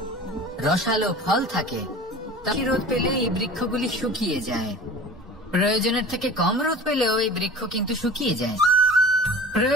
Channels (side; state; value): both; normal; correlation 0.39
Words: রসালো ফল থাকে? তাই রোদ পেলে এই বৃক্ষগুলি শুকিয়ে যায়। প্রয়োজনের থেকে কম রোদ পেলেও এই বৃক্ষ কিন্তু শুকিয়ে যায়।